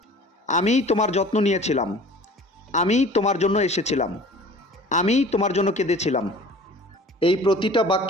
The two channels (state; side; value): normal; both; correlation 0.45